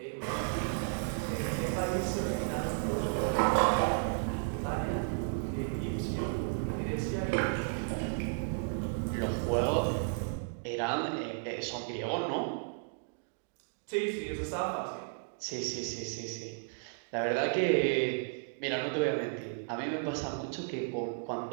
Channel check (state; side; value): silent; left; digital silence